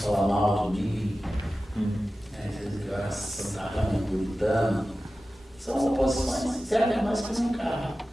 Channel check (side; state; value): both; normal; correlation 0.95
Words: mal de mim, dizendo que eu era santarrão, puritano. São oposições, servem mais que um carro